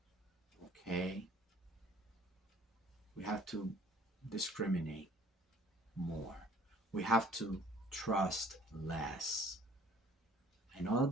Okay? We have to discriminate more. We have to trust less. I know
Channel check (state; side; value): normal; both; correlation 0.55